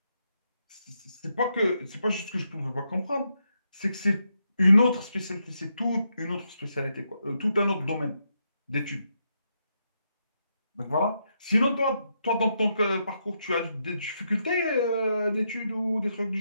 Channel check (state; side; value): inverted; both; correlation -0.81